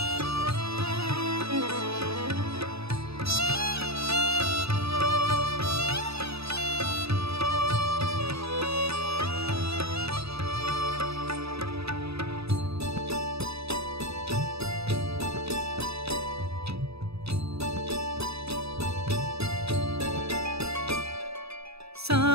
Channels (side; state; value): left; late; 0.78 ms